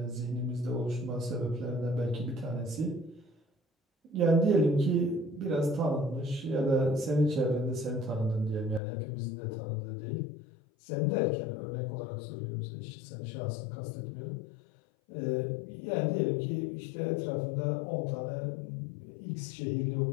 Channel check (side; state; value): right; drops out; at 8.8 s